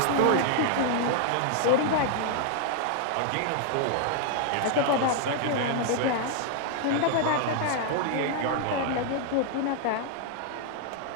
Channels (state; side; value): different; both; correlation 0.00